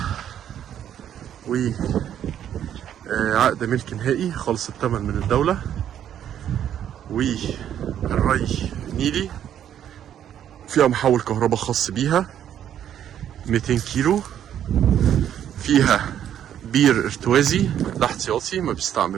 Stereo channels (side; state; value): left; quieter; 10.1 dB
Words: وعقد ملك نهائي، خالص الثمن من الدولة، والري نيلي، فيها محول كهرباء خاص بيها 200 كيلو، فيها بير ارتوازي. ده احتياطي ما